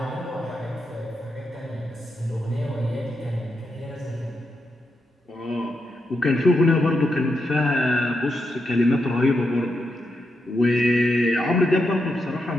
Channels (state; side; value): normal; both; correlation 0.84